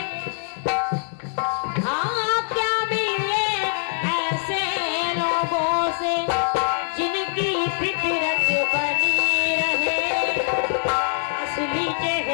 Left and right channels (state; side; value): silent; right; digital silence